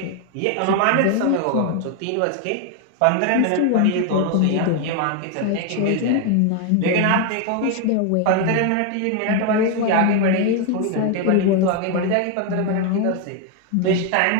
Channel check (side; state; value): both; different; correlation 0.01